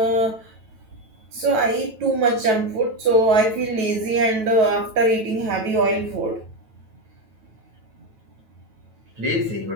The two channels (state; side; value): late; left; 9.2 ms